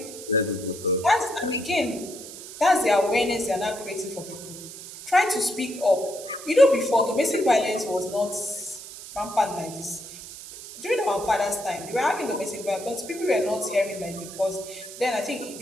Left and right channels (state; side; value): noise; right; hiss, 13 dB below the sound